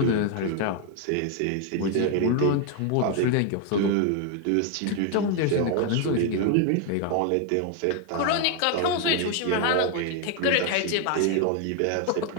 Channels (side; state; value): both; different; correlation 0.01